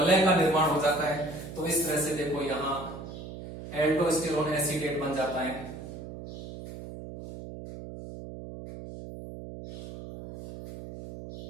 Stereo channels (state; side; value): noise; right; hum, 11 dB below the sound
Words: का निर्माण हो जाता है। तो इस तरह से देखो यहां एल्डोस्टेरोन एसीटेट बन जाता है।